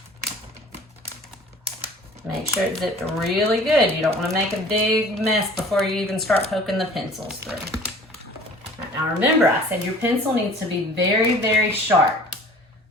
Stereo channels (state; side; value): normal; both; correlation 0.47